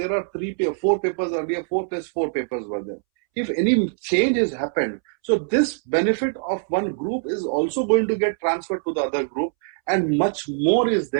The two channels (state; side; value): silent; left; 63 dB below the other